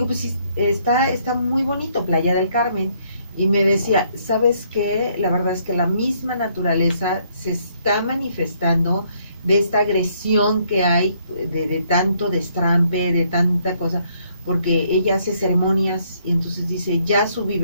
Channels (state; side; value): inverted; both; correlation -0.69